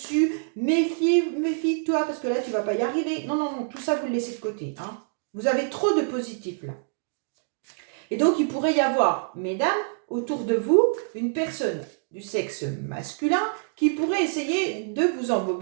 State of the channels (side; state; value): left; silent; digital silence